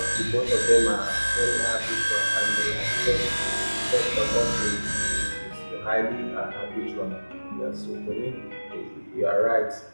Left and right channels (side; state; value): both; inverted; correlation -1.00